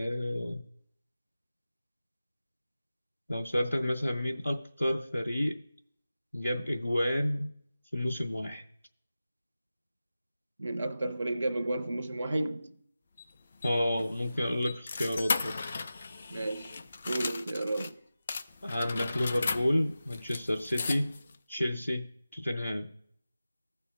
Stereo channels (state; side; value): inverted; both; correlation -0.94